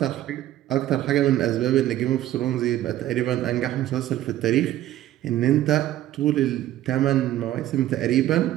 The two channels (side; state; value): left; quieter; 13.6 dB